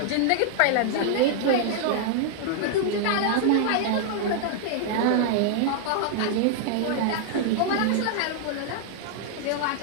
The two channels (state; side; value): different; both; correlation -0.01